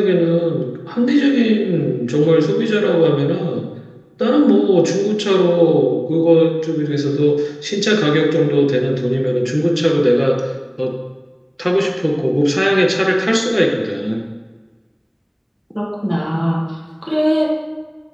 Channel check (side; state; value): both; identical; correlation 1.00